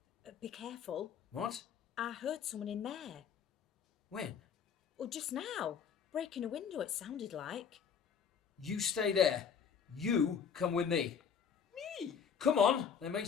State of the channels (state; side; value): quieter; right; 7.1 dB